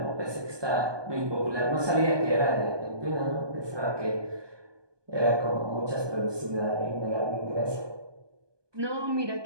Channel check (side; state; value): left; late; 1.2 ms